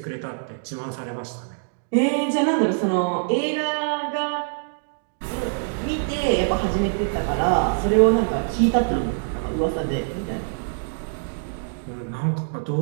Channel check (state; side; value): silent; left; digital silence